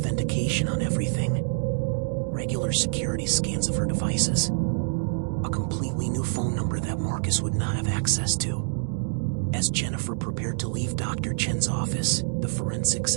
on everything. Regular security scans of her devices. A completely new phone number that Marcus would not have access to. As Jennifer prepared to leave Dr. Chen's office, the forensics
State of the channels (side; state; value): left; silent; digital silence